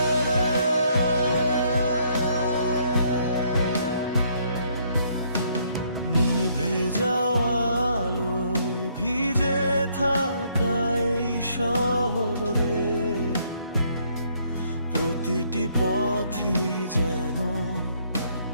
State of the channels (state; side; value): inverted; both; correlation -0.68